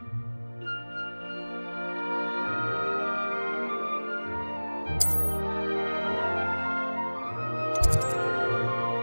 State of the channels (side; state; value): both; inverted; correlation -1.00